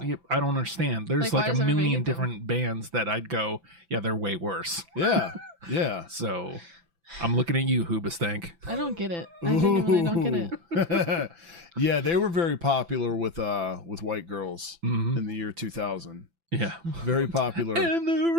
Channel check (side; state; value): left; late; 5.9 ms